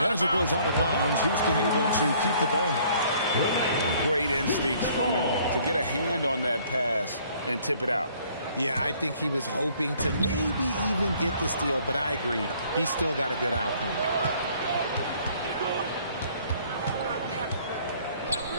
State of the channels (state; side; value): inverted; both; correlation -0.59